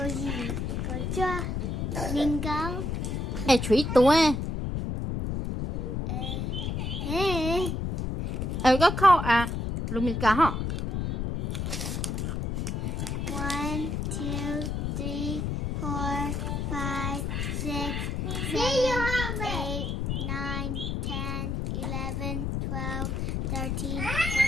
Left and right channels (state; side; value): noise; left; rumble, 1 dB below the sound